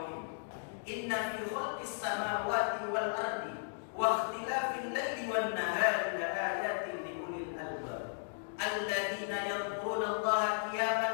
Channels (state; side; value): silent; right; digital silence